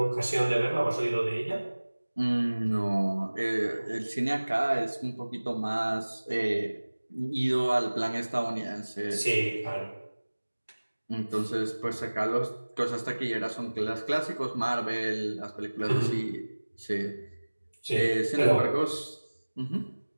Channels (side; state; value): both; inverted; correlation -1.00